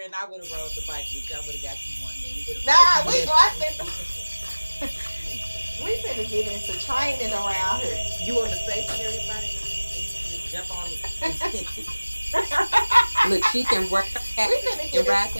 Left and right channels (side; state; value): both; inverted; correlation -1.00